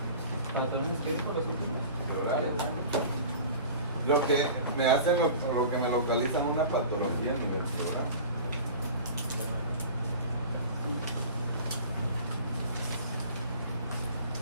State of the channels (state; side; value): inverted; both; correlation -0.40